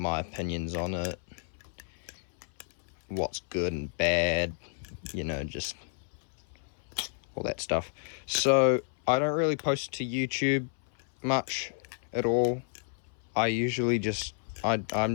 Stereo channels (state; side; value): silent; right; 57 dB below the other